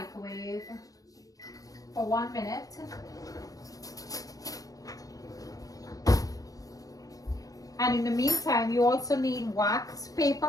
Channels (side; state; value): right; late; 0.17 ms